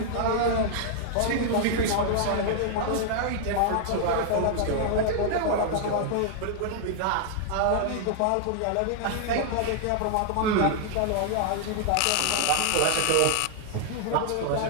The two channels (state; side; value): different; both; correlation -0.01